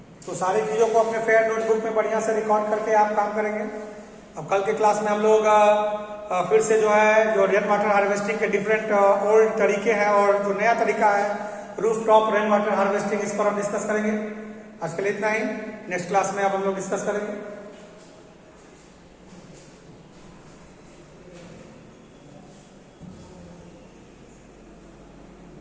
तो सारी चीजों को अपने फेयर नोटबुक में बढ़िया से रिकॉर्ड करके आप काम करेंगे। अब कल के क्लास में हम लोग फिर से जो है जो रेन वाटर हार्वेस्टिंग के डिफरेंट ओल्ड तरीके हैं और जो नया तरीका है roof top rain water harvesting, इस पर हम डिस्कस करेंगे। आज के लिए इतना ही। नेक्स्ट क्लास में अब हम लोग डिस्कस करेंगे।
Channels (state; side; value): identical; both; correlation 1.00